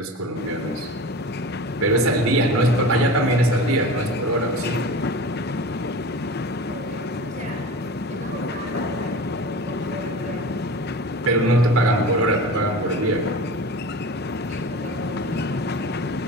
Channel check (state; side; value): normal; both; correlation 0.34